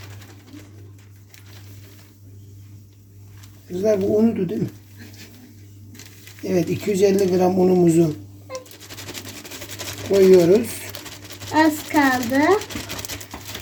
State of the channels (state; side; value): identical; both; correlation 1.00